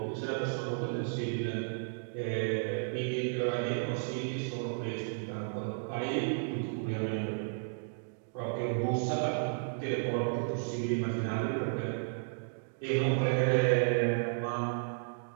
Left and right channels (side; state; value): left; silent; digital silence